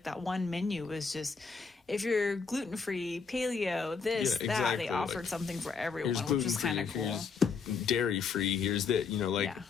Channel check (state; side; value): quieter; right; 5.3 dB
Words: that one menu was just, if you're gluten-free, paleo, that, they offered something for everyone, which was kind of cool. Dairy-free, here's that,